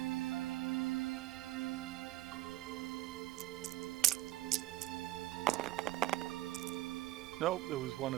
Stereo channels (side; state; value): left; quieter; 16.4 dB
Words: Nope, there was 1